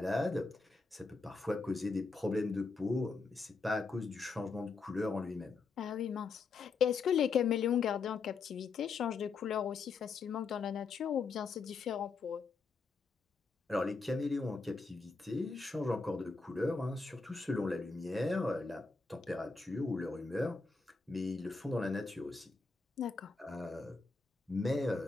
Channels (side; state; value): right; quieter; 4.3 dB